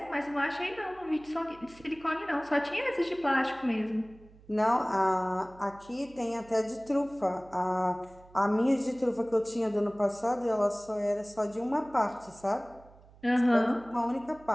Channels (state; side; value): noise; right; hum, 24 dB below the sound